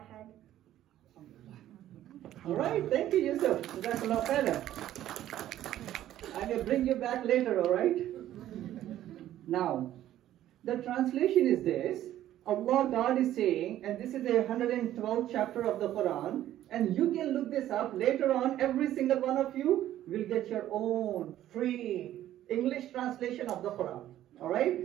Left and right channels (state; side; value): quieter; left; 12.8 dB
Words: أحد. All right, thank you, Yusuf. Jazakallah khairan. I will bring you back later, all right? Now, the translation is this. Allah, God is saying, and this is the 112th chapter of the Quran, and you can look this up later on. Every single one of you will get your own free English translation of the Quran, all right?